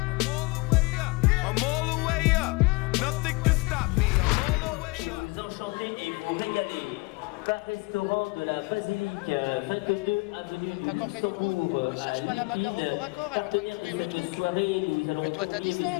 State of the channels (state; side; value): quieter; right; 26.0 dB